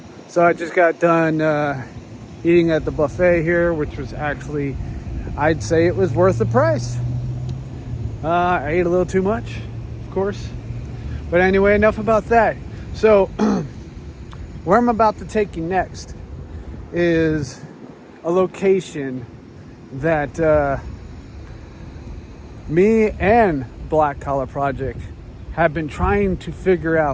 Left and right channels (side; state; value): both; identical; correlation 1.00